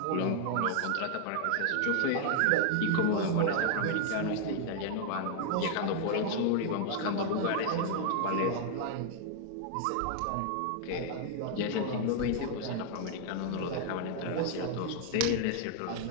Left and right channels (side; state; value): both; different; correlation 0.00